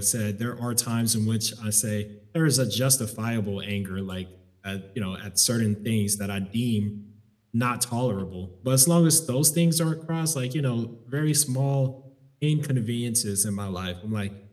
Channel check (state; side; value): identical; both; correlation 1.00